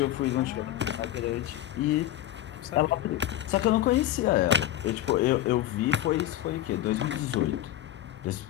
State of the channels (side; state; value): right; quieter; 13.0 dB